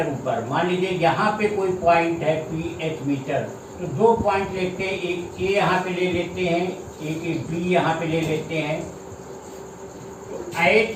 ऊपर, मान लीजिए यहाँ पे कोई पॉइंट है PH मीटर, तो 2 पॉइंट लेते हैं, एक A यहाँ पे ले लेते हैं, एक B यहाँ पे ले लेते हैं। तो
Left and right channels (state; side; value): identical; both; correlation 1.00